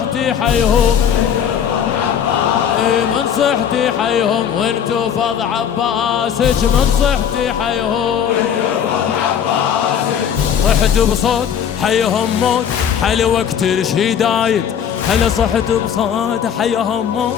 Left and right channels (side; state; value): right; quieter; 8.4 dB